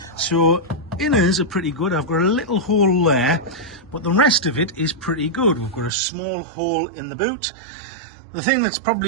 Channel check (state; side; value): drops out; left; at 5.9 s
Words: So inners are pretty good. I've got a little hole there, but the rest of it is pretty good. We've got a small hole in the boot. The thing that's